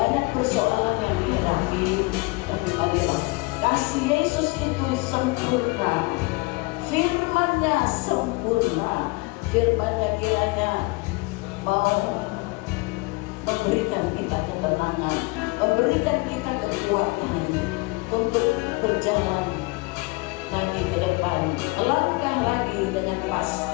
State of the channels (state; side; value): quieter; right; 26.2 dB